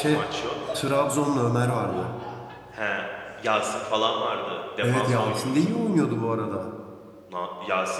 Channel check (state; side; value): identical; both; correlation 1.00